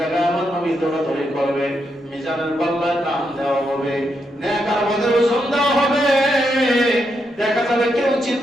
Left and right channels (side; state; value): both; normal; correlation 0.81